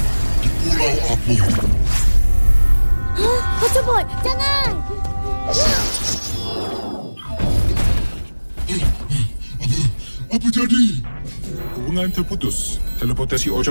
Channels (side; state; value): both; inverted; correlation -1.00